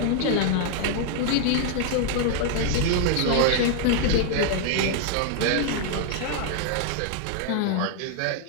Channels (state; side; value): different; both; correlation 0.00